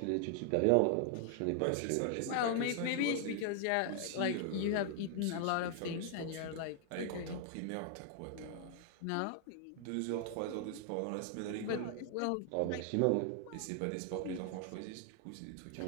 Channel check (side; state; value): both; different; correlation 0.00